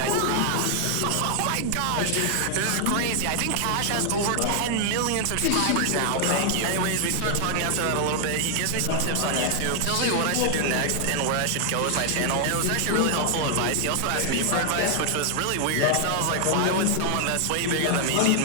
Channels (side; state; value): both; different; correlation 0.00